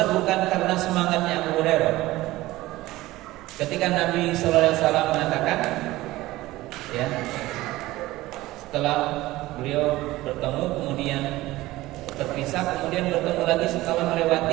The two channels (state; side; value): quieter; left; 17.8 dB